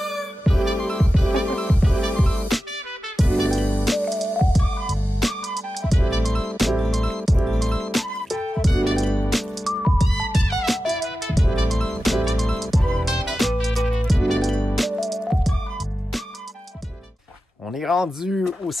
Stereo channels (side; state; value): both; normal; correlation 0.93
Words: On est rendu au